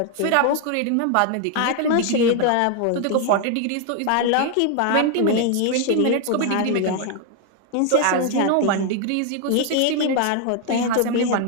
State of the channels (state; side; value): different; both; correlation 0.00